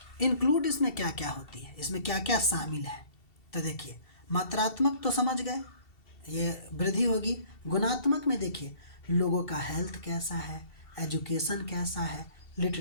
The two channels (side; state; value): right; late; 2.7 ms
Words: इंक्लूड इसमें क्या क्या होती है, इसमें क्या क्या शामिल है, तो देखिए मात्रात्मक तो समझ गए, ये वृद्धि होगी। गुणात्मक में देखिए लोगों का हेल्थ कैसा है, एजुकेशन कैसा है,